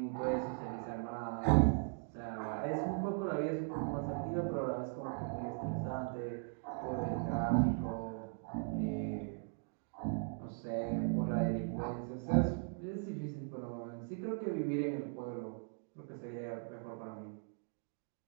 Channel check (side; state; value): left; silent; 52 dB below the other